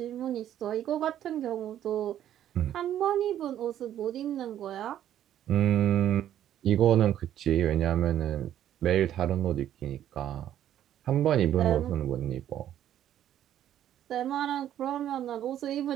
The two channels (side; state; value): left; quieter; 11.3 dB